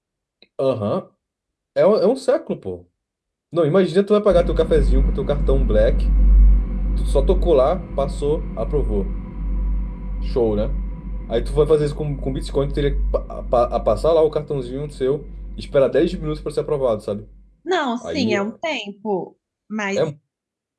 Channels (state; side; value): identical; both; correlation 1.00